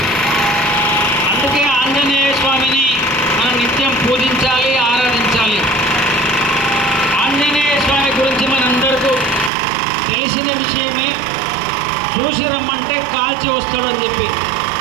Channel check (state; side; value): drops out; left; at 9.5 s